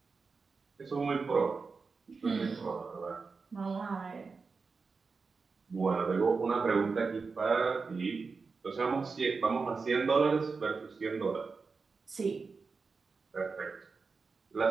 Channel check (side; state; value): left; quieter; 4.6 dB